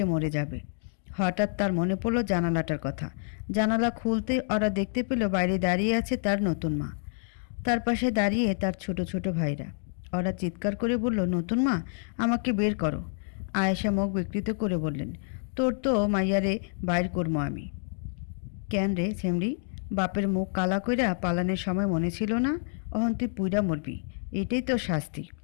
মরে যাবে। হঠাৎ তার মনে পড়ল জানালাটার কথা। জানালা খুলতে ওরা দেখতে পেল বাইরে দাঁড়িয়ে আছে তার নতুন মা। তার পাশে দাঁড়িয়ে তার ছোট ছোট ভাইরা। ওরা চিৎকার করে বলল, নতুন মা, আমাকে বের করো। আয়েশা মুখ বিকৃত করে বললেন, তোর তো মাইয়ারে বাইর করবো আমি। কেন রে ছেমড়ি, বাপের মুখ কালা কইরা পালানের সময় মনে ছিল না? অহন তুই পুইরা মরবি, এটাই তো শাস্তি।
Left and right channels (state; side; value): silent; right; digital silence